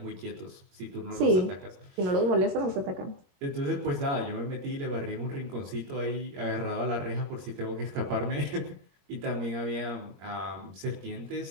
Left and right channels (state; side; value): late; left; 21 ms